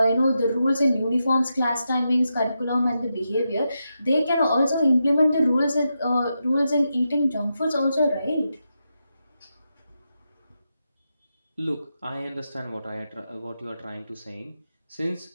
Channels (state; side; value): inverted; both; correlation -0.87